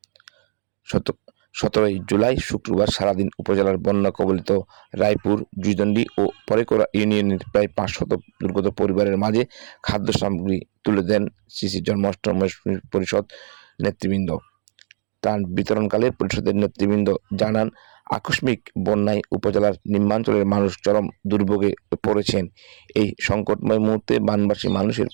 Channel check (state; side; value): silent; left; digital silence